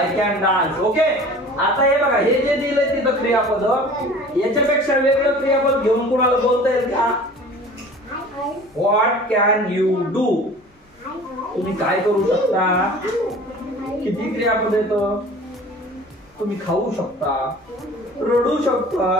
can dance okay आता हे बघा हे जे दिलंय तिथं क्रियापद याच्यापेक्षा वेगळं क्रियापद घेऊन कुणाला बोलता येईल का व्हॉट कॅन यू डू तुम्ही काय करू शकता किती क्रियापद येतं तुम्ही खाऊ शकता रडू शकता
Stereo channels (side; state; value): both; normal; correlation 0.43